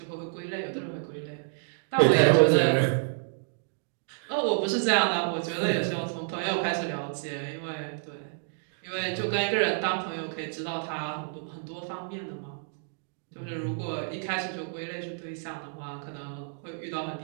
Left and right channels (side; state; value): left; silent; digital silence